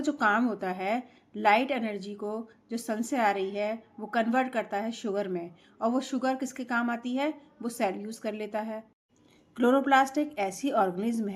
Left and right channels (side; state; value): both; identical; correlation 1.00